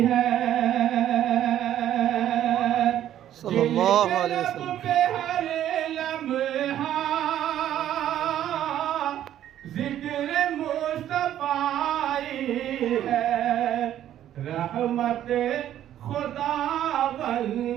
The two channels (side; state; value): left; quieter; 11.5 dB